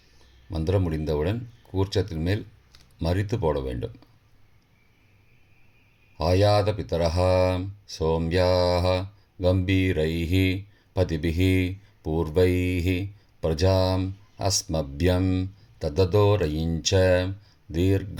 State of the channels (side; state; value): both; identical; correlation 1.00